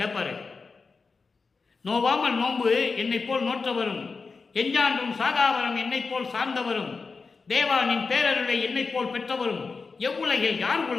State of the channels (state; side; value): quieter; right; 4.5 dB